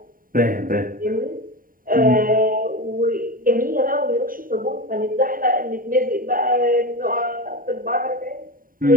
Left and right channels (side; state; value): left; late; 0.41 ms